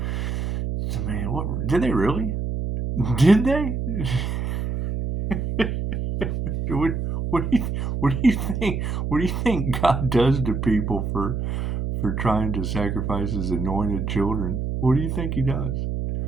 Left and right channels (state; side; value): noise; right; hum, 2 dB below the sound